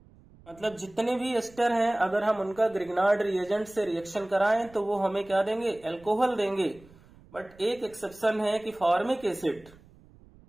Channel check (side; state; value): right; noise; rumble, 25 dB below the sound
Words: मतलब जितने भी एस्टर हैं अगर हम उनका ग्रिग्नार्ड रिएजेंट से रिएक्शन कराएं तो वो हमें क्या देंगे, अल्कोहल देंगे। बट एक एक्सेप्शन है कि फॉर्मिक एसिड